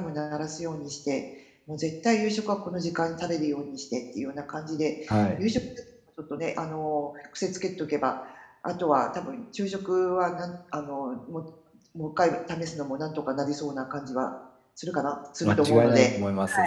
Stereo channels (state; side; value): identical; both; correlation 1.00